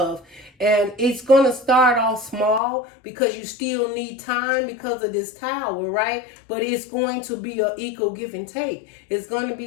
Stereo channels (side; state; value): right; drops out; at 2.6 s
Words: And it's going to start off small because you still need time because of this tower, right? But it's going to be an equal give and take. It's going to